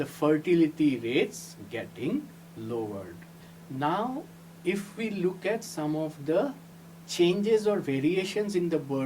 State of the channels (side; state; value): both; identical; correlation 1.00